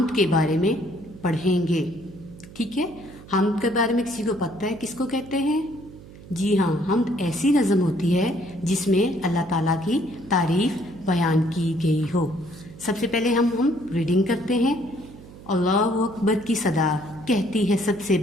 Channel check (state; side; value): noise; right; hum, 18 dB below the sound